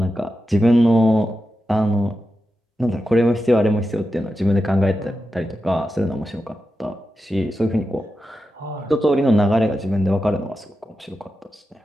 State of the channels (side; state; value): both; normal; correlation 0.90